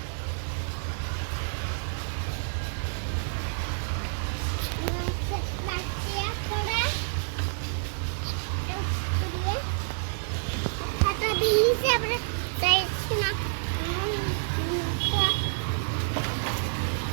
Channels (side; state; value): left; silent; 59 dB below the other